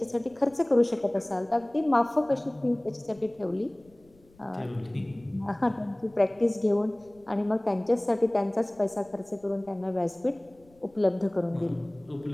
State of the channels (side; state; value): left; noise; rumble, 30 dB below the sound